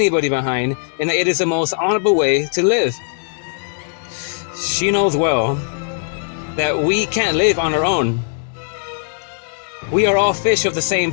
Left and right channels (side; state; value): right; silent; digital silence